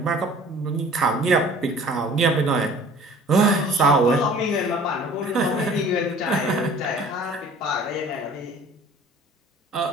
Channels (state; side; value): normal; both; correlation 0.48